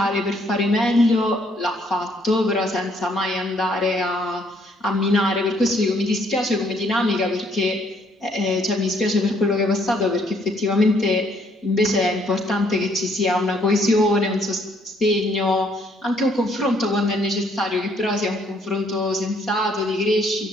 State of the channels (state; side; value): normal; both; correlation 0.67